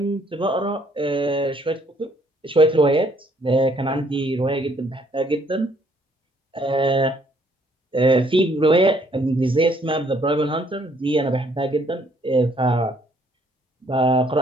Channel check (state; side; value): normal; both; correlation 0.65